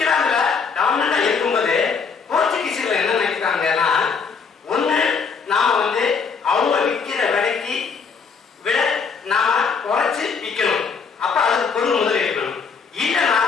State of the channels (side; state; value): right; quieter; 5.6 dB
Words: டாமினா இருக்கும்போது போர்ச்சுகீசியர்கள் என்ன நினைக்கிறாங்கன்னா, ஒண்ணு நாம வந்து அவங்க விற்கிற விலைக்கு விட நாம குறைச்சு விற்கணும், அப்ப அதுக்கு பொருள் முதல் இருக்கணும். இல்லைன்னா